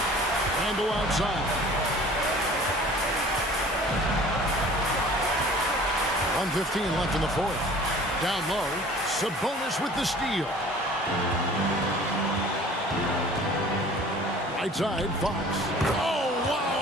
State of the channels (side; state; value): both; normal; correlation 0.47